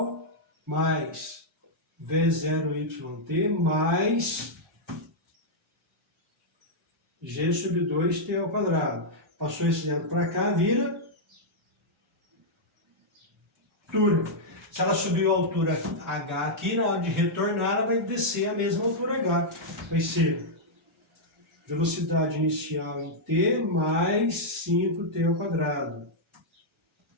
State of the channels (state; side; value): normal; both; correlation -0.06